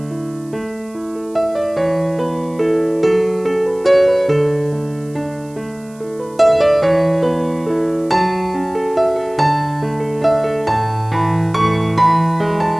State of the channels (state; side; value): noise; right; hiss, 27 dB below the sound